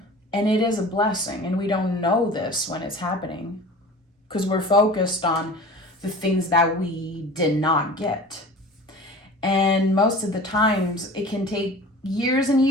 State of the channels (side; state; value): both; normal; correlation 0.40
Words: and it is a blessing, and we don't know this when it's happening because we're focused on the things that we did not get. And most of the times it can take years and